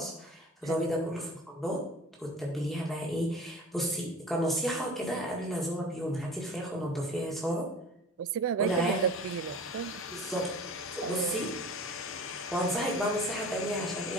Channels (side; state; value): both; normal; correlation 0.42